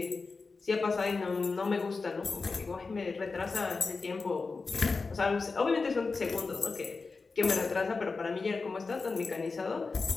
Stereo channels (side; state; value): right; quieter; 4.2 dB